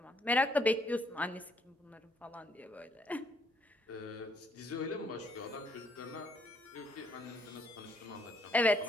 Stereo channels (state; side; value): normal; both; correlation 0.68